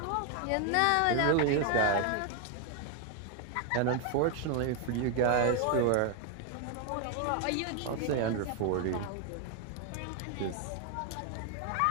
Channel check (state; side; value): different; both; correlation 0.01